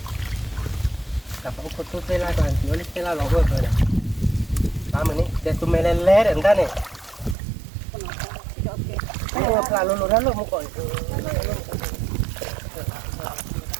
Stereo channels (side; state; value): left; drops out; at 7.4 s